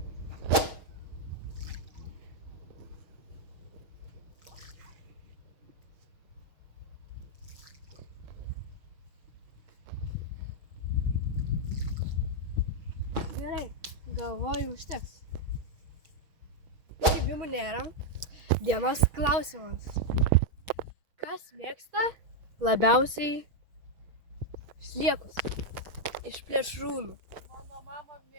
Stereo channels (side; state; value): left; late; 6.3 ms